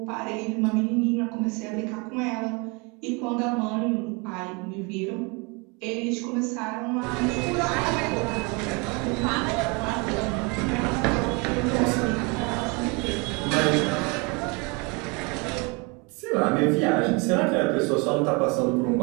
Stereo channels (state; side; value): quieter; left; 29.8 dB